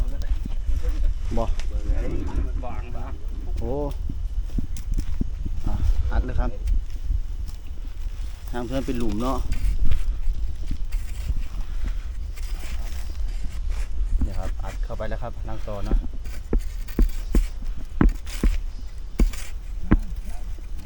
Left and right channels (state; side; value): identical; both; correlation 1.00